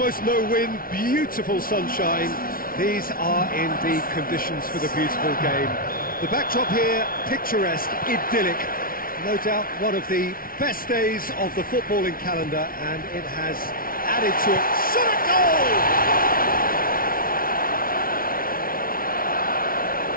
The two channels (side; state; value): right; late; 0.42 ms